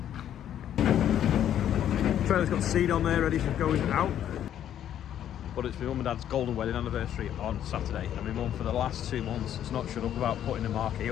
Trailer's got seed on there ready for going out. But it's my mum and dad's golden wedding anniversary on Saturday, and my mum for the last 2 months has not shut up about putting the marquee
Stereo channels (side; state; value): right; quieter; 10.6 dB